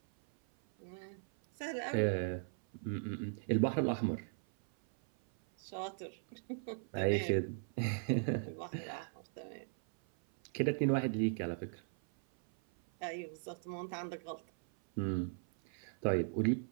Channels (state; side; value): silent; left; 52 dB below the other